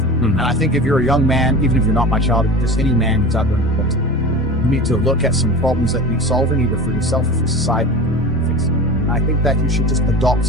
And I think if you're a young man, even if you're not my child, if just any man who's out there in the world, you need to look at some problems that need solving, either for yourself or for society. I think that you should just adopt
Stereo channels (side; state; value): both; normal; correlation 0.33